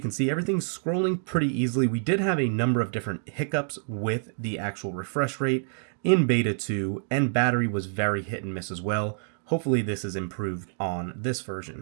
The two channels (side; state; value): left; silent; 60 dB below the other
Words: can see, everything's scrolling pretty easily. We did have a number of different hiccups with the actual refresh rate in Beta 2, and battery was very hit and miss as well. Hopefully this is improved on this